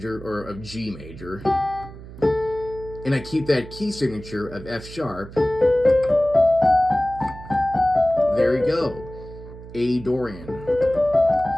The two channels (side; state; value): right; noise; hum, 15 dB below the sound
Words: or of G major, and I keep that key signature of F sharp, there we go, A Dorian.